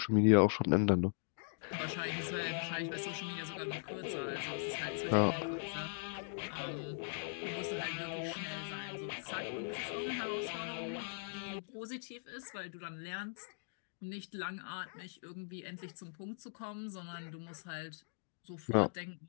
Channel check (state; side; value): silent; right; digital silence